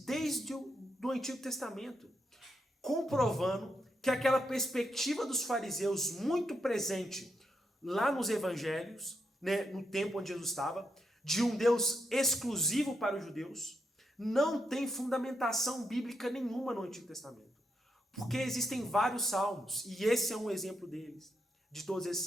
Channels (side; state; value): both; normal; correlation 0.81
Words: desde do Antigo Testamento, comprovando que aquela perspectiva dos fariseus muito presente lá nos evangelhos, né, no tempo onde Jesus estava, de um Deus exclusivo para os judeus, não tem fundamentação bíblica nenhuma no Antigo Testamento. Porque existem vários salmos, e esse é um exemplo deles, de todos esses